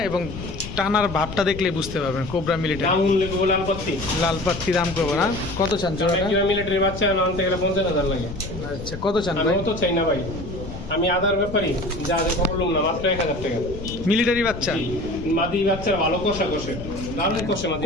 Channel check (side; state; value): left; noise; rumble, 10 dB below the sound